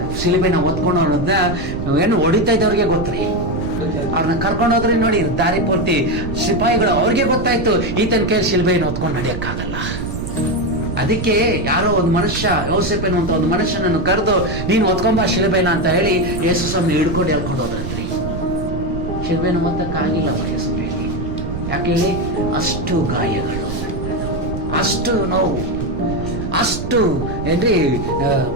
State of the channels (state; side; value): noise; right; rumble, 6 dB below the sound